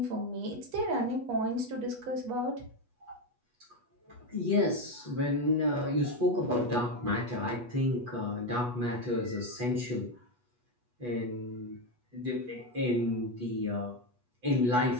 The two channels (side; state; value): left; late; 8.2 ms